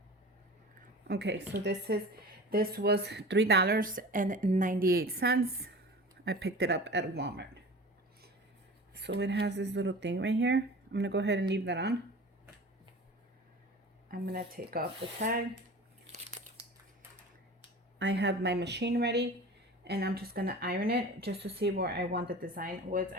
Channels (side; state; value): both; normal; correlation 0.37